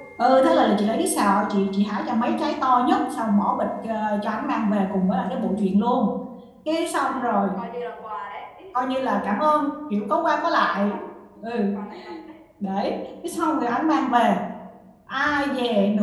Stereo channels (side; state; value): both; identical; correlation 1.00